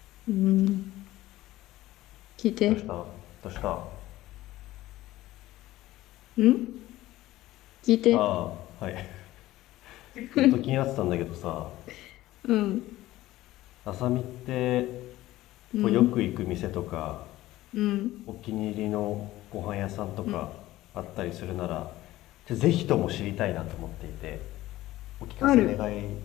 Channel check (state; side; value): quieter; right; 16.2 dB